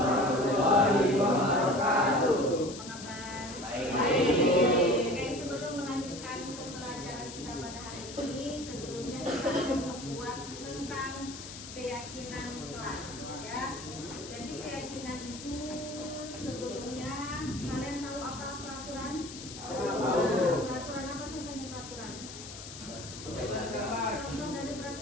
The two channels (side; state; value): left; noise; hiss, 12 dB below the sound